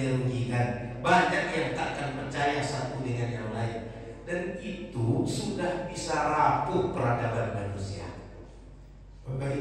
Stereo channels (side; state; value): both; identical; correlation 1.00